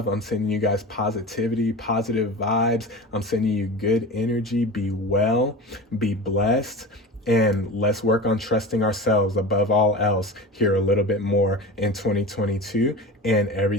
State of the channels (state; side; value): normal; both; correlation 0.31